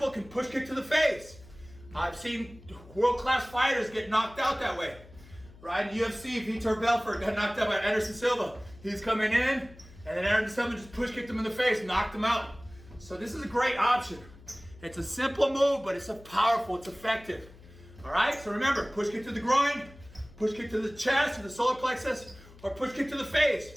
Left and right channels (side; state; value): left; noise; hum, 21 dB below the sound